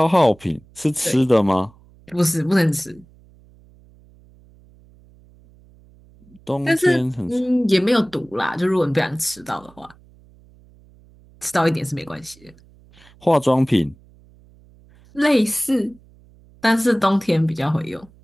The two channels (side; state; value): right; noise; hum, 27 dB below the sound